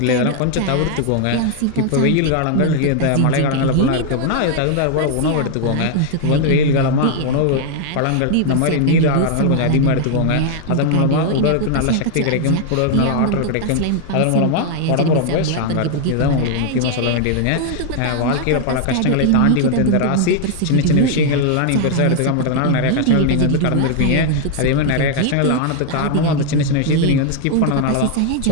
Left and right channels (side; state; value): both; different; correlation 0.00